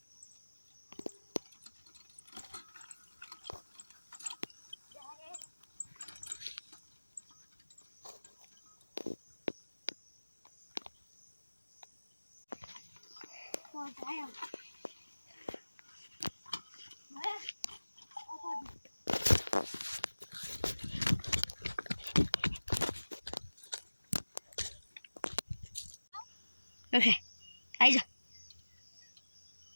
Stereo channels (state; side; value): inverted; both; correlation -1.00